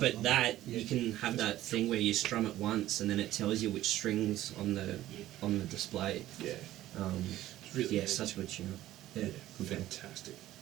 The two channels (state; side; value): quieter; left; 14.4 dB